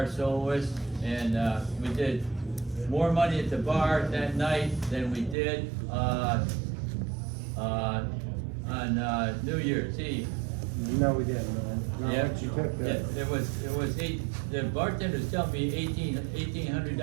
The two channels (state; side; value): drops out; left; at 5.4 s